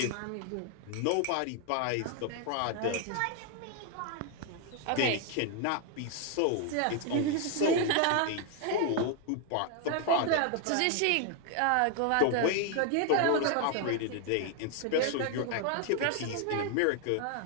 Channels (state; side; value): different; both; correlation 0.00